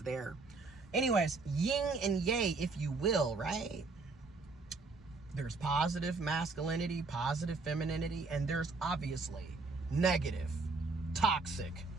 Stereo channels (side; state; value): left; quieter; 3.9 dB